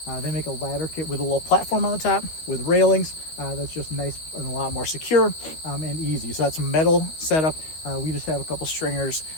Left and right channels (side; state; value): right; late; 12 ms